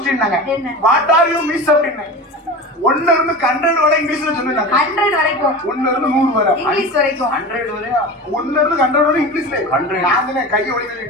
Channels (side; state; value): both; normal; correlation 0.30